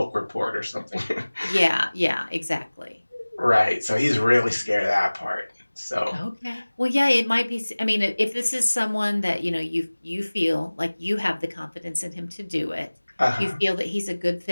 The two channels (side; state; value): both; inverted; correlation -1.00